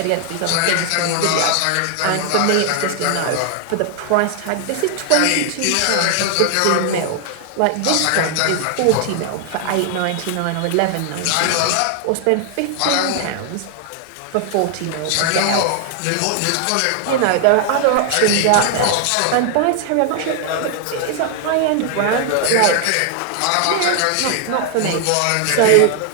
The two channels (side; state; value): both; different; correlation 0.00